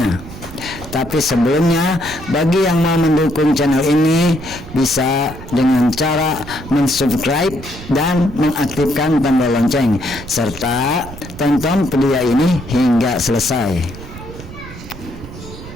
Tapi sebelumnya, bagi yang mau mendukung channel ini bisa dengan cara mensubscribe dan mengaktifkan tombol lonceng serta tonton video ini hingga selesai.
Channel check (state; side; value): noise; right; rumble, 14 dB below the sound